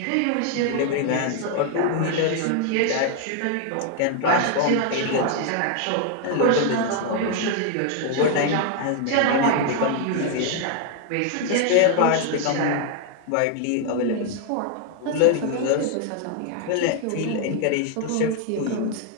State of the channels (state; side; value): different; both; correlation 0.00